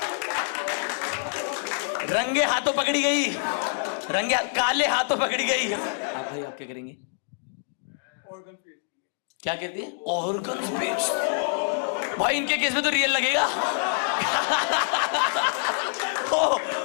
रंगे हाथों पकड़ी गई, काले हाथों पकड़ी गई। आप भाई, आप क्या करेंगे? क्या कहती है? ऑर्गन्स बेच। भाई इनके केस में तो रियल लगेगा। ओ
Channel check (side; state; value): right; silent; digital silence